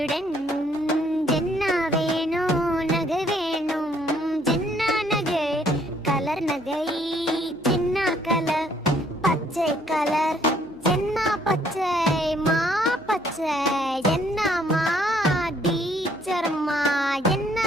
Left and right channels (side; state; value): left; noise; hum, 29 dB below the sound